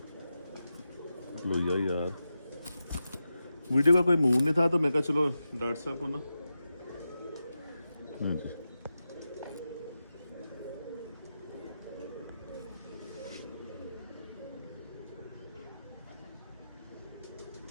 लोहिया यार, वीडियो का कोई मूड नहीं था तो मैं कहा चलो डॉक्टर साहब को ना। हाँ जी,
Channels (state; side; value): inverted; both; correlation -0.91